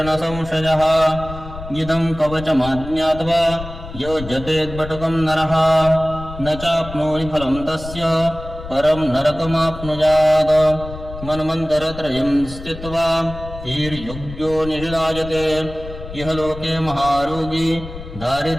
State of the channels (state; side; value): noise; left; rumble, 12 dB below the sound